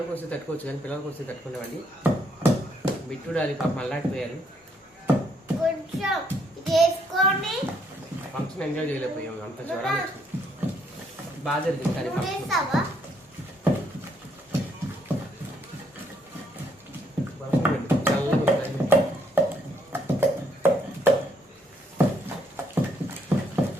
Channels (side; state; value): both; normal; correlation 0.71